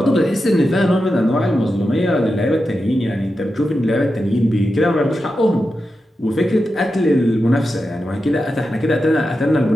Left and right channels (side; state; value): both; normal; correlation 0.90